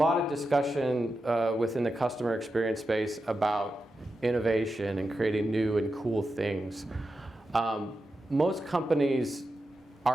of discussion within the customer experience space about innovation and creating new and cool things. Most companies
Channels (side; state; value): both; normal; correlation 0.89